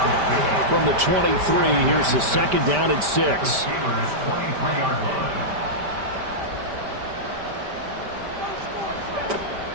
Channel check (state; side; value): late; left; 5.1 ms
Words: From the 23, here's the 2nd down and 6.